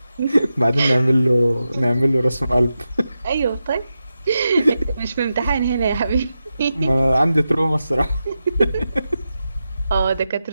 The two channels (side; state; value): both; inverted; correlation -0.90